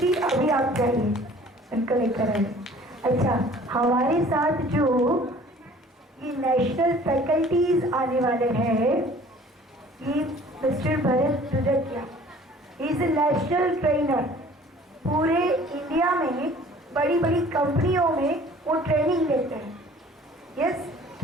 अभी आप जाइए, उनको लेकर आइए। अच्छा, हमारे साथ जो ये नेशनल फैकल्टीज आने वाले हैं, ये mister Bharat Dudakia, is a national trainer. पूरे इंडिया में बड़ी बड़ी कंपनियों में वो ट्रेनिंग देते हैं। यस,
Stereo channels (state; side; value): normal; both; correlation 0.50